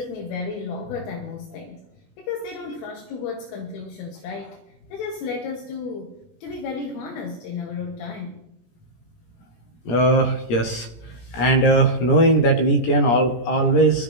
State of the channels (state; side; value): late; right; 17 ms